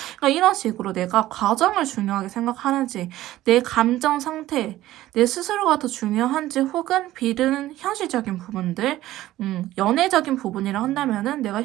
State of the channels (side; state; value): left; quieter; 15.1 dB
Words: 그러니까 이런 식으로 내가 과정을 중요하게 생각하는지, 내 감정 상태, 내 스스로가 더 중요한지, 혹은 B는 현실적인 부분들, 연애적인 부분이라 한다면은 내가